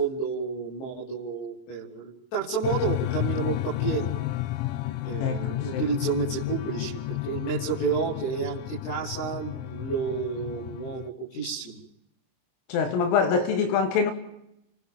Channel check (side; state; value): right; late; 23 ms